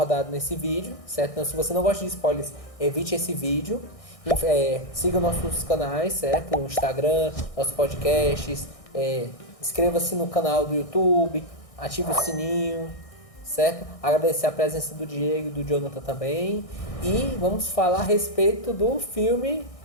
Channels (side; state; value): right; late; 1.6 ms